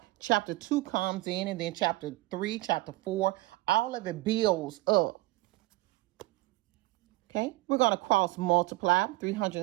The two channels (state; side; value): quieter; left; 20.4 dB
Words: chapter 2 comes in, and then chapter 3, chapter 4, all of it builds up. Okay, we're going to cross multiply